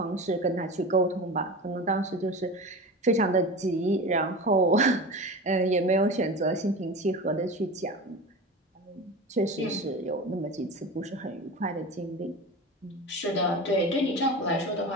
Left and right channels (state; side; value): normal; both; correlation 0.30